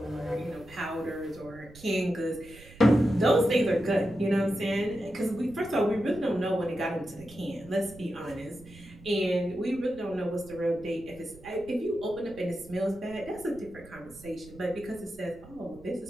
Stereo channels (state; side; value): noise; right; rumble, 20 dB below the sound